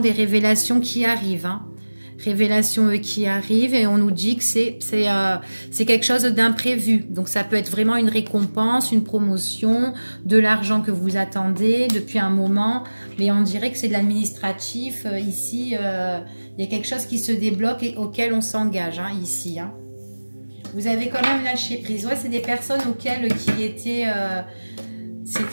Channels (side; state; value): both; inverted; correlation -1.00